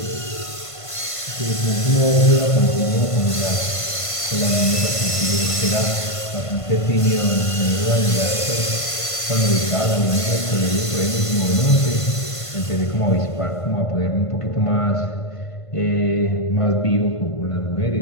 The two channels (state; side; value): late; right; 1.5 ms